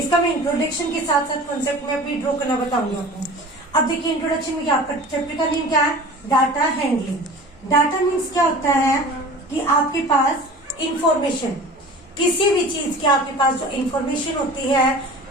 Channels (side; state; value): both; normal; correlation 0.39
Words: मैं इंट्रोडक्शन के साथ साथ कॉन्सेप्ट मैप भी ड्रॉ करना बताऊंगी आपको। अब देखिए इंट्रोडक्शन में क्या, आपका चैप्टर का नेम क्या है? Data handling. डाटा मीन्स क्या होता है कि आपके पास इंफॉर्मेशन, किसी भी चीज की आपके पास जो इंफॉर्मेशन होती है,